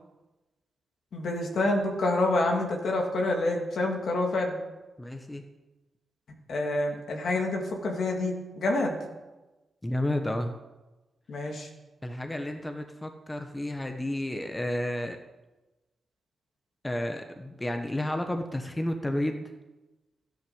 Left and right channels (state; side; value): normal; both; correlation 0.84